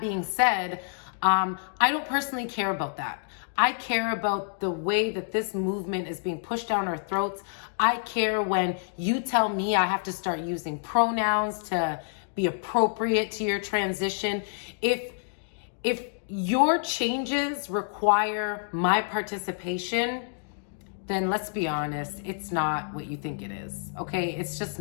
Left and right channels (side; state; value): right; silent; digital silence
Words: said, I don't personally care about that. I care about the way that this movement is being pushed down our throats. I care when you tell me I have to start using pronouns to be appropriate to your transition. If your changes require my participation, then let's be honest, it's not what you think it is, okay? It's just